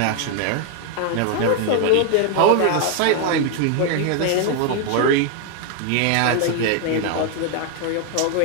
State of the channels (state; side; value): different; both; correlation 0.01